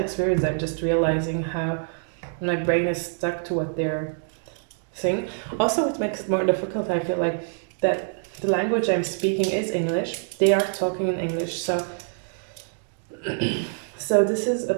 I'm just realizing how my brain is stuck to what they're saying. Also, what makes it more difficult, I feel like, that the language I'm speaking is English. They are talking in English, so so this is a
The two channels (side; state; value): left; silent; digital silence